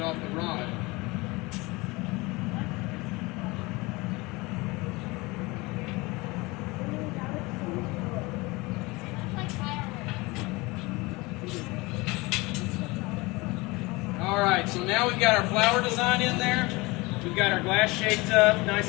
off the rod. Alright, so now we've got our flower design in there. We've got our glass shaped up,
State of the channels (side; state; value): right; quieter; 23.6 dB